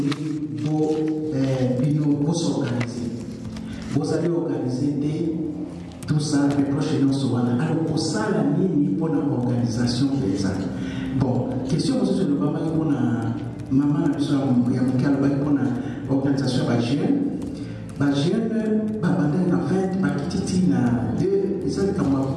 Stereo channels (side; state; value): both; identical; correlation 1.00